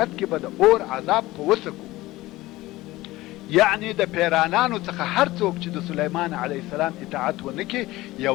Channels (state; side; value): quieter; right; 18.2 dB